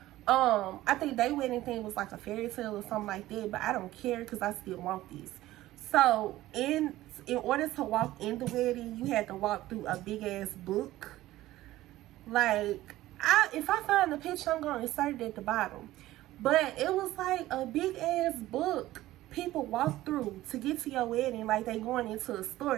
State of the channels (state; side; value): quieter; left; 15.8 dB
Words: I think their wedding thing was like a fairy tale or something like that, but I don't care because I still want this. So in order to walk in the wedding, you had to walk through a big ass book. Like, if I find the picture, I'm gonna insert it at the bottom. But it was like a big ass book people walk through to get to your wedding, like they going into a